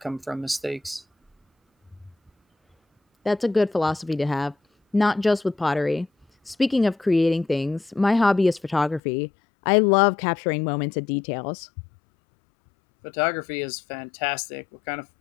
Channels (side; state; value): right; drops out; at 9.0 s